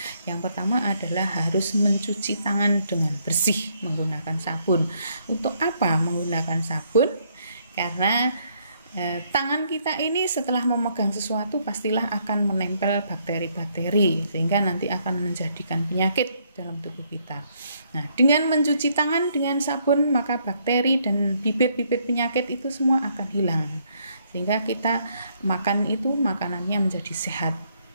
Yang pertama adalah harus mencuci tangan dengan bersih menggunakan sabun. Untuk apa menggunakan sabun? Karena tangan kita ini setelah memegang sesuatu pastilah akan menempel bakteri-bakteri, sehingga nanti akan menjadikan penyakit dalam tubuh kita. Nah, dengan mencuci tangan dengan sabun, maka bakteri dan bibit-bibit penyakit itu semua akan hilang, sehingga kita makan itu makanannya menjadi sehat,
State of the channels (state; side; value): inverted; both; correlation -0.70